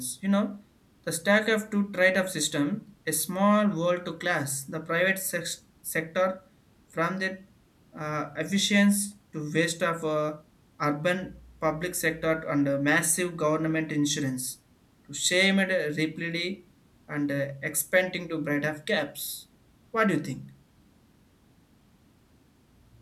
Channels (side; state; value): both; identical; correlation 1.00